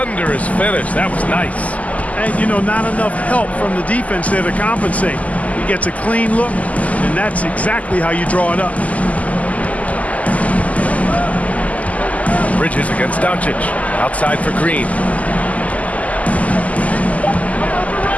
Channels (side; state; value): right; late; 0.073 ms